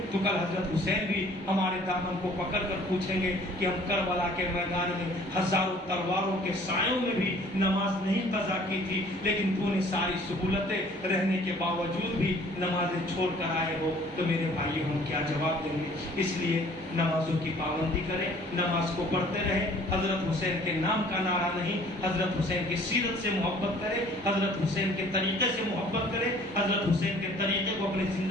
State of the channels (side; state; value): both; normal; correlation 0.54